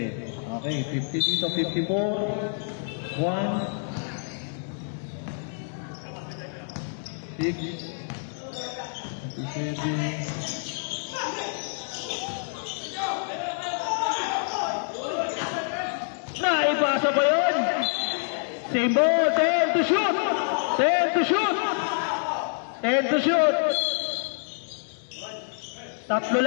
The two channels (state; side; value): silent; right; digital silence